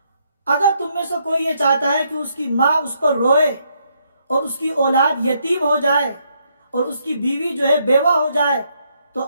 اگر تم میں سے کوئی یہ چاہتا ہے کہ اس کی ماں اس پر روئے اور اس کی اولاد یتیم ہو جائے اور اس کی بیوی جو ہے بیوہ ہو جائے تو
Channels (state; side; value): inverted; both; correlation -0.74